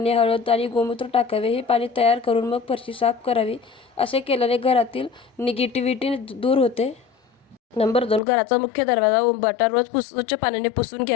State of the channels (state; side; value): drops out; right; at 8.2 s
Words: हळद आणि गोमूत्र टाकावे. हे पाणी तयार करून मग फरशी साफ करावी. असे केल्याने घरातील निगेटिव्हिटी दूर होते. नंबर 2, घराचा मुख्य दरवाजा उंबाटा रोज स्वच्छ पाण्याने पुसून